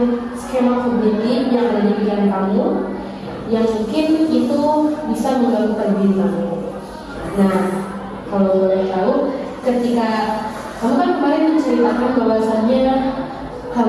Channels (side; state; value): both; identical; correlation 1.00